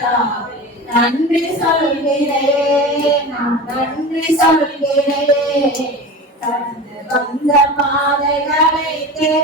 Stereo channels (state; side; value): normal; both; correlation 0.31